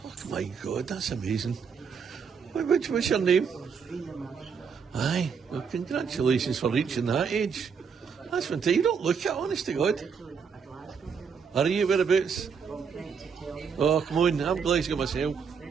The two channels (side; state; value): left; quieter; 6.3 dB